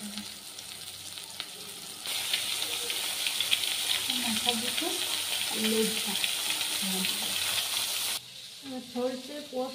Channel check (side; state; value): both; identical; correlation 1.00